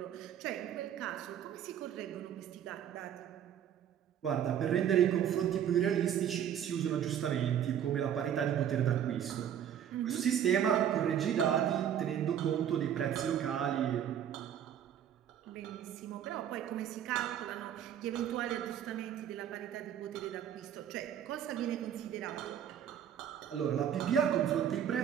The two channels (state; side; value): quieter; left; 9.6 dB